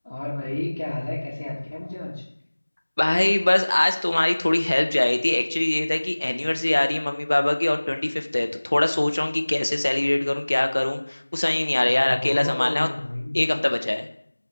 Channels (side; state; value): both; inverted; correlation -1.00